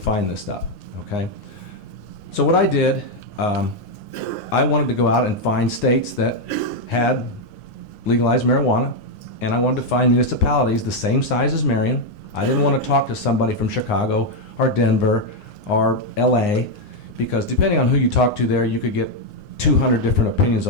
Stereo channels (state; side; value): late; right; 9.7 ms